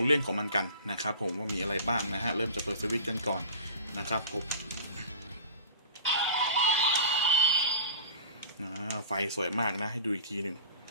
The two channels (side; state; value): both; inverted; correlation -0.39